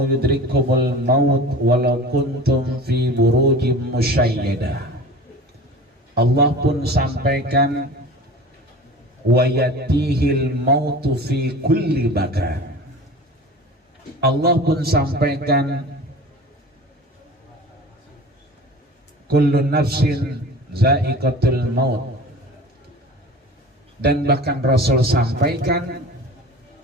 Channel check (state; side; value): normal; both; correlation 0.38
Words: yudrikumul maut walau kuntum fi burujim musyayyadah. Allah pun sampaikan wa yatihil mautu fi kulli makan. Allah pun sampaikan kullu nafsin za'iqatul maut, dan bahkan Rasul sampaikan